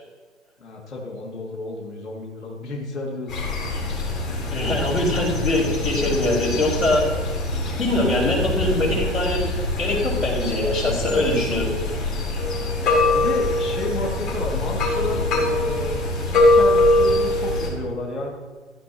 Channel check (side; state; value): both; normal; correlation 0.44